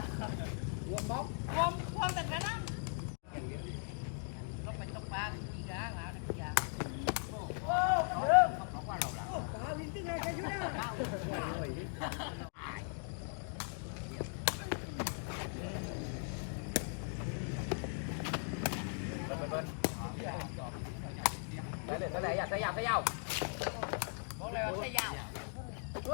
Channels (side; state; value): right; silent; 52 dB below the other